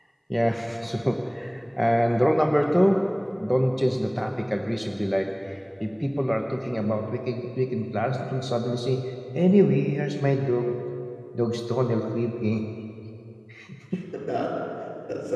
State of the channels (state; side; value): identical; both; correlation 1.00